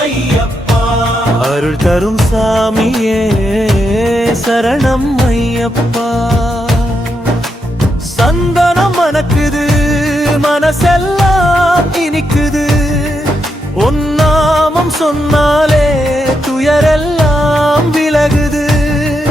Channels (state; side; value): normal; both; correlation 0.82